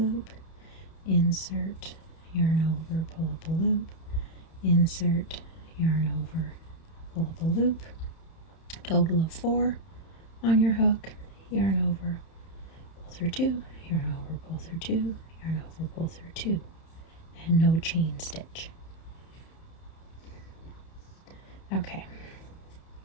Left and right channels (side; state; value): right; late; 31 ms